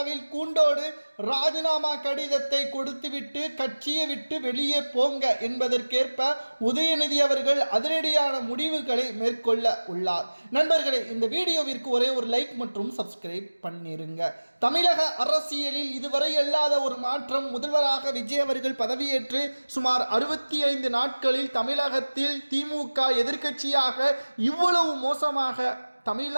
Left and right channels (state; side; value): inverted; both; correlation -1.00